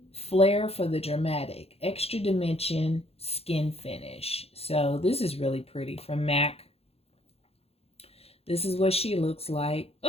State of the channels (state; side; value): late; right; 0.29 ms